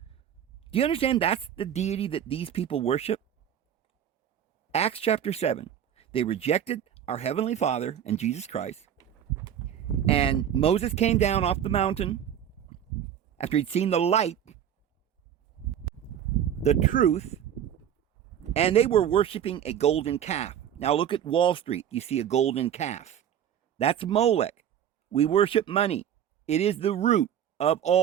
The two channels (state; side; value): quieter; left; 9.6 dB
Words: Do you understand that's the deity that these people worship? Acts chapter 7. They rejected our Heavenly Father and Jesus Christ. And Moses came down off the mountain after he'd seen the light, the truth, and they were worshiping a golden calf. Now look at Wall Street. You see a golden calf. That's Molech. We worship money. It is the root of